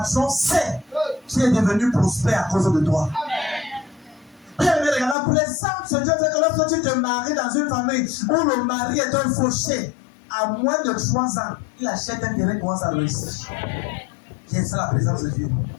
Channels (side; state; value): right; drops out; at 5.2 s